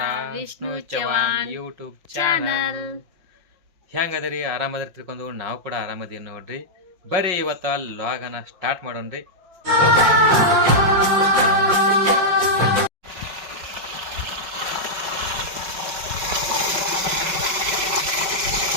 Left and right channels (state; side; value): late; left; 5.6 ms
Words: Vishnu Vishnu Chavan Chavan YouTube channel channel ಹೆಂಗದಿರಿ ಆರಾಮದಿರಿ ತಿಳ್ಕೊಂಡು ನಾವು ಕೂಡ ಆರಾಮದೀವಿ ನೋಡ್ರಿ. ಬರ್ರಿ ಇವತ್ತು ಲಾಗನ ಸ್ಟಾರ್ಟ್ ಮಾಡೋಣ್ರಿ.